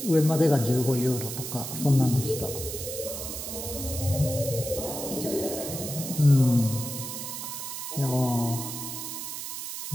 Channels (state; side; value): noise; right; hiss, 6 dB below the sound